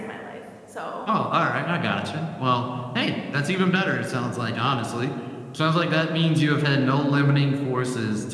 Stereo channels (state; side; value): identical; both; correlation 1.00